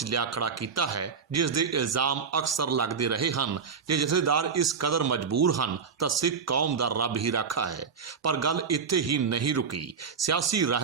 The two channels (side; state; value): left; quieter; 5.9 dB